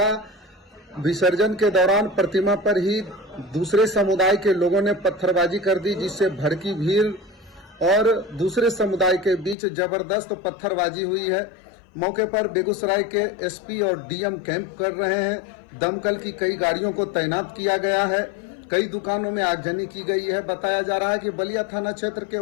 विसर्जन के दौरान प्रतिमा पर ही दूसरे समुदाय के लोगों ने पत्थरबाजी कर दी, जिससे भड़की भीड़ और दूसरे समुदाय के बीच जबरदस्त पत्थरबाजी हुई है। मौके पर बेगूसराय के एसपी और डीएम कैंप कर रहे हैं। दमकल की कई गाड़ियों को तैनात किया गया है। कई दुकानों में आगजनी की गई है। बताया जा रहा है कि बलिया थाना क्षेत्र के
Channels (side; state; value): right; drops out; at 9.6 s